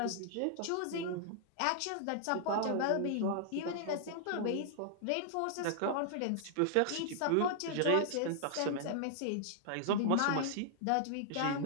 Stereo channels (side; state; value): both; different; correlation -0.01